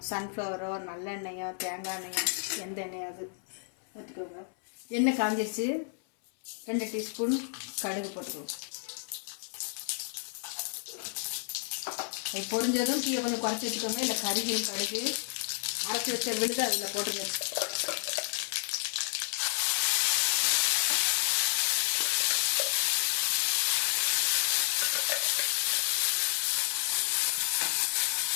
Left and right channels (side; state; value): right; silent; 57 dB below the other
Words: சன்ஃப்ளவரோ நல்லெண்ணெயோ தேங்காய் எண்ணெயோ எந்த எண்ணெயோ அது ஊற்றிக்கோங்க. எண்ணெய் காஞ்சிடுச்சு. 2 டீஸ்பூன் கடுகு போட்டுக்குவோம். பொரிஞ்சதும் தீயை கொஞ்சம் குறைச்சி வச்சுக்கோங்க. இல்லை கருகில் கடுகு அரைச்சி வச்ச விழுது அதில் போட்டுருங்க.